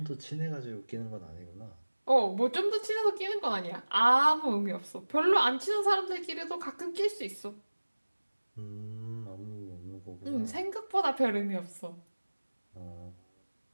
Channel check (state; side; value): inverted; both; correlation -1.00